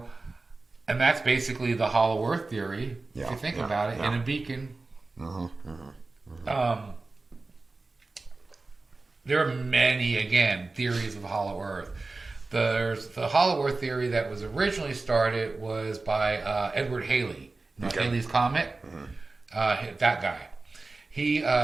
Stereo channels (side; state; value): left; quieter; 3.5 dB